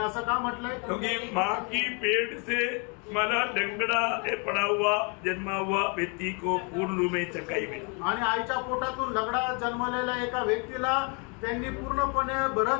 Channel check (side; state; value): right; quieter; 34.5 dB